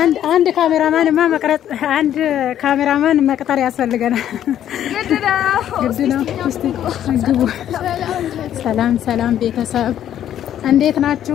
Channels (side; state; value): right; quieter; 10.8 dB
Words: አንድ ካሜራማን መቅጠር ያስፈልገናል ግድ ነው እስቲ ግቡ ሰላም ቤተሰብ እንዴት ናችሁ